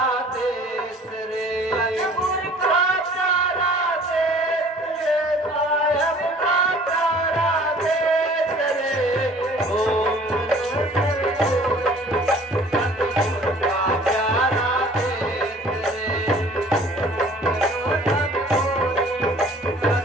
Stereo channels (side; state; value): both; normal; correlation 0.51